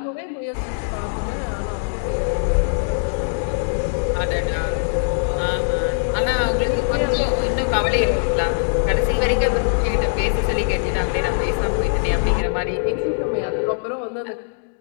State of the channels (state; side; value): silent; right; digital silence